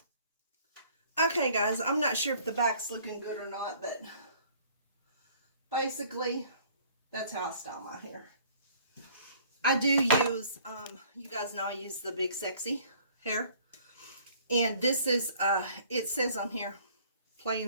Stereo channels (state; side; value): inverted; both; correlation -0.56